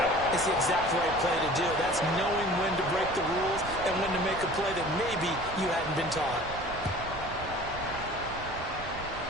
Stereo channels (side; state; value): right; noise; rumble, 14 dB below the sound